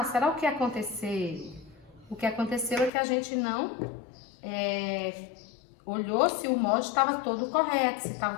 será o que aconteceu? O que aconteceu é que a gente não olhou se o molde estava todo correto, se estava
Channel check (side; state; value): right; drops out; at 2.9 s